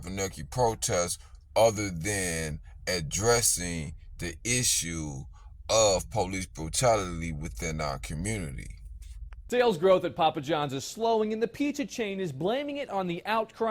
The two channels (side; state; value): both; identical; correlation 1.00